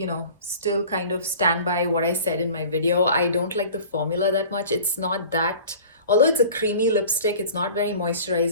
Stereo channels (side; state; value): both; inverted; correlation -0.43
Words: still kind of stand by what I said in my video. I don't like the formula that much. It's not that, although it's a creamy lipstick, it's not very